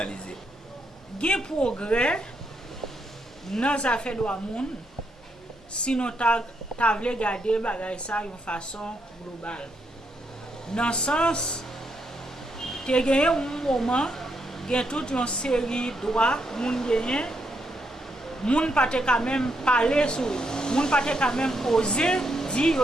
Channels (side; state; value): both; normal; correlation 0.79